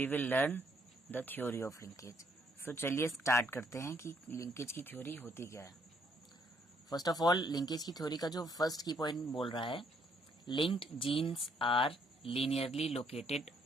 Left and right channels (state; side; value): normal; both; correlation 0.69